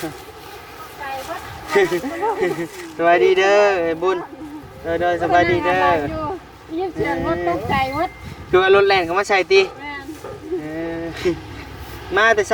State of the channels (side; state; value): both; identical; correlation 1.00